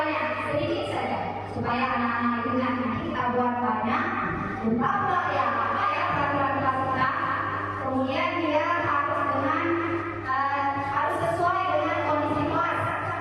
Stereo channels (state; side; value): identical; both; correlation 1.00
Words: sedikit saja supaya anak-anak itu nanti kita buat banyak. Lupa pula ya apa ya peraturan kelas kita. Kemudian dia harus dengan harus sesuai dengan kondisi kelas